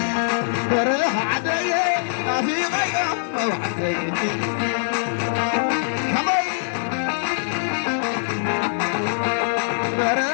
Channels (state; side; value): silent; right; digital silence